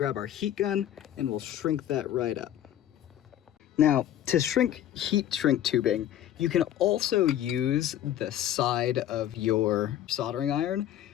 our heat gun and we'll shrink that right up. Now, to shrink heat shrink tubing, you can also use the side of your soldering iron,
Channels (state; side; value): quieter; right; 11.6 dB